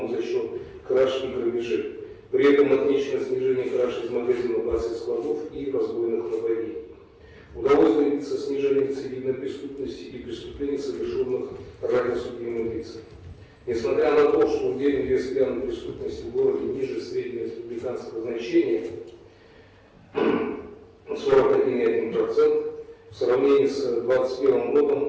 за счет краж и грабежей. При этом отмечено снижение краж из магазинов, баз и складов и разбойных нападений. Удалось добиться снижения рецидивной преступности и преступлений, совершенных ранее судимыми лицами. Несмотря на то, что удельный вес пьяной преступности в городе ниже среднего республиканского значения 41,1%, в сравнении с 2021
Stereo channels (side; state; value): both; identical; correlation 1.00